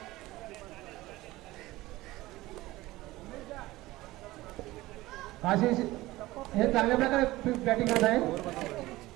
आशिष हे चांगल्या प्रकारे बॅटिंग करत आहे.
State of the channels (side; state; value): left; quieter; 18.4 dB